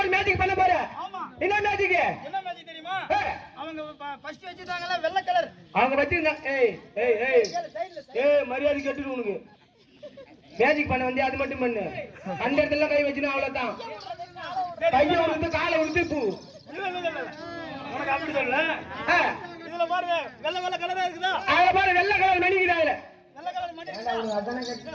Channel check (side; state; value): both; identical; correlation 1.00